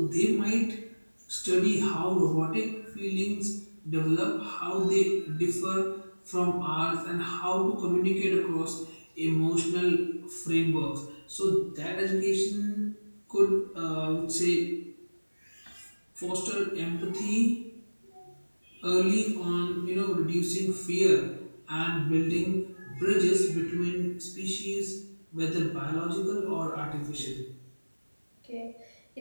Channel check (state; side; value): inverted; both; correlation -1.00